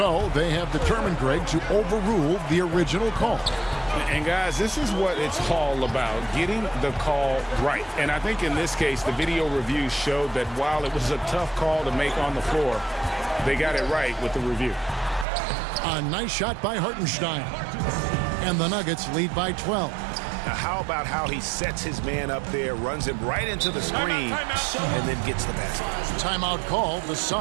they have determined, Greg, to overrule the original call. And guys, this is what it's all about, getting the call right. And I think in this case, the video review showed that while it was a tough call to make on the floor, they got it right with the review. A nice shot by Hartenstein. And the Nuggets lead by 12. Now, how about how he sets his man up there, runs him right into the screen, and then gets the basket? Timeout call, the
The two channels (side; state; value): left; drops out; at 15.2 s